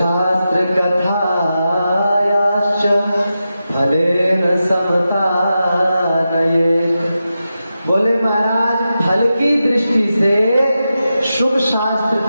कथायाश्च फलेन समता नये। बोले महाराज फल की दृष्टि से शुभ शास्त्र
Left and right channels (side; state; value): both; inverted; correlation -0.90